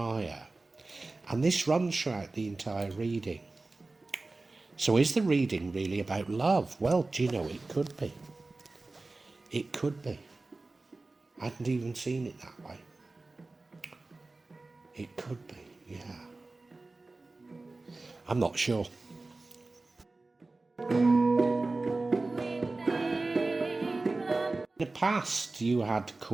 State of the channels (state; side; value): quieter; left; 3.3 dB